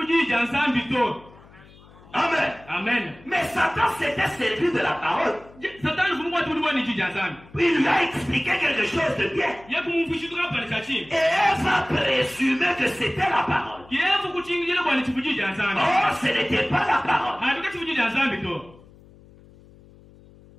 Amen. Amen. Mais Satan s'était servi de la parole. Il lui a expliqué quelque chose de bien. Et elle va présumer que c'était la parole. Oh, ce n'était pas la parole.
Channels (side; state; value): left; noise; hum, 24 dB below the sound